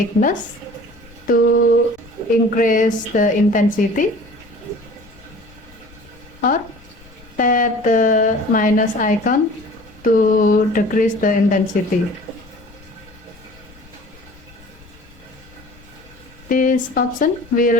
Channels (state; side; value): noise; left; rumble, 24 dB below the sound